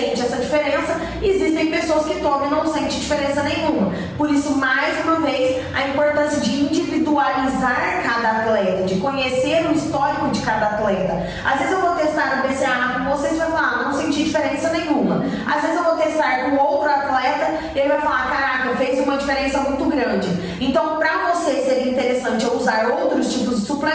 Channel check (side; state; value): both; identical; correlation 1.00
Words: essa diferença, e existem pessoas que tomam e não sentem diferença nenhuma. Por isso, mais uma vez, a importância de individualizar cada atleta, de conhecer o histórico de cada atleta. Às vezes eu vou testar o BCA com vocês e vai falar, não senti diferença nenhuma. Às vezes eu vou testar com outro atleta e ele vai falar, caraca, fez uma diferença muito grande. Então, para você seria interessante eu usar outros tipos de